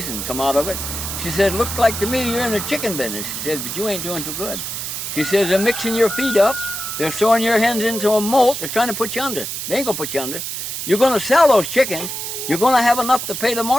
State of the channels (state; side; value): noise; right; hiss, 5 dB below the sound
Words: and come out of it. She said, looks like to me you're in the chicken business. She said, but you ain't doing too good. She says, they're mixing your feed up. They're throwing your hens into a moat. They're trying to put you under. They ain't going to put you under. You're going to sell those chickens. You're going to have enough to pay the